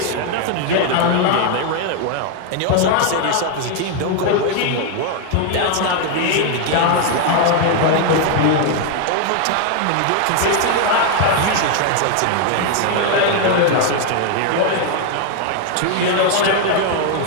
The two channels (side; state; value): both; different; correlation 0.01